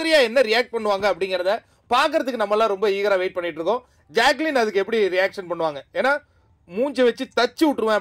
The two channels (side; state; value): both; identical; correlation 1.00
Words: என்ன ரியாக்ட் பண்ணுவாங்க அப்படிங்கிறத பார்க்கறதுக்கு நம்மளாம் ரொம்ப ஈகரா வெயிட் பண்ணிட்டு இருக்கோம். ஜாக்லின் அதுக்கு எப்படி ரியாக்ஷன் பண்ணுவாங்க? ஏன்னா மூஞ்சை வச்சு தச்சு விட்டுருவேன்